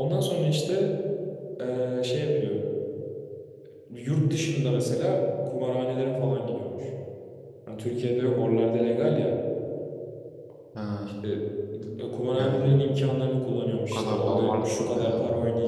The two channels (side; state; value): both; identical; correlation 1.00